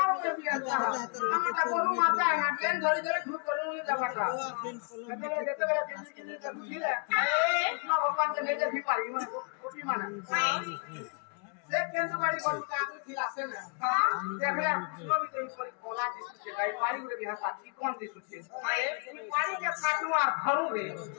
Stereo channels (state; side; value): quieter; right; 37.2 dB